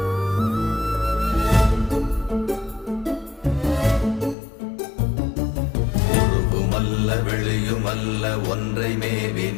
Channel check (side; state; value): right; drops out; at 4.4 s